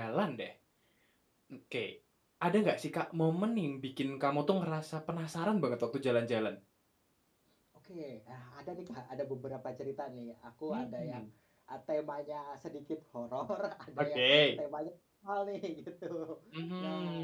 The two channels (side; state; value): both; identical; correlation 1.00